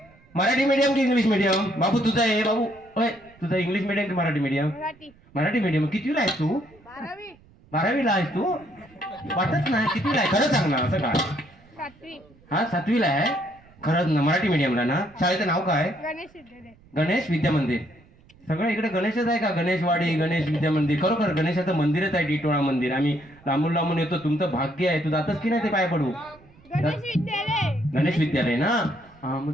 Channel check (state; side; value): noise; right; rumble, 27 dB below the sound